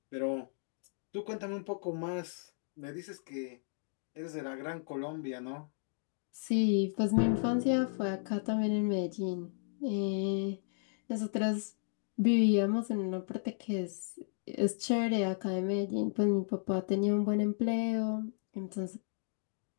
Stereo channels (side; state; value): right; silent; digital silence